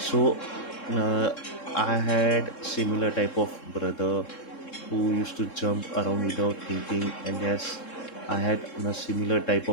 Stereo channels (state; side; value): late; right; 3.7 ms